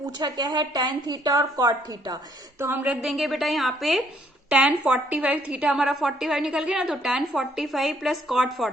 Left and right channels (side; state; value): both; normal; correlation 0.67